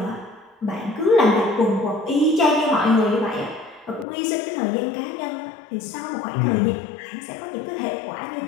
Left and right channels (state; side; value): drops out; right; at 4.0 s